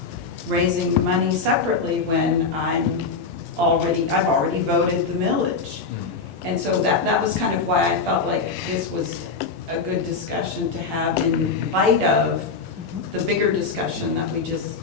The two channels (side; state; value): right; quieter; 4.6 dB